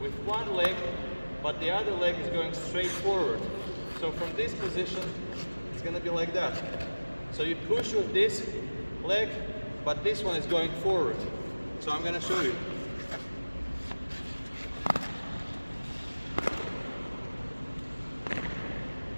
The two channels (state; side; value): inverted; both; correlation -1.00